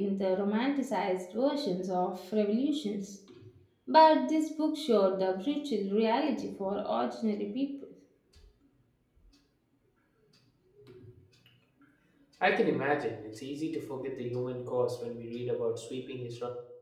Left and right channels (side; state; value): both; identical; correlation 1.00